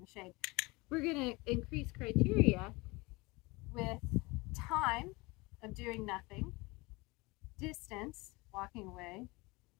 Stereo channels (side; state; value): right; quieter; 24.3 dB